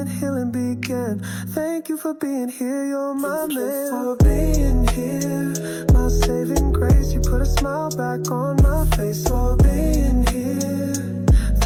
healing began. Thank you for being here, you're my man. Thank you for being here, my saving grace. You put a smile back on my face. For being here,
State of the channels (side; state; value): both; identical; correlation 1.00